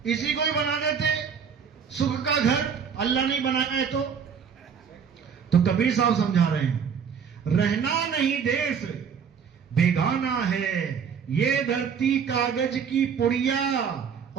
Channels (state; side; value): quieter; left; 6.9 dB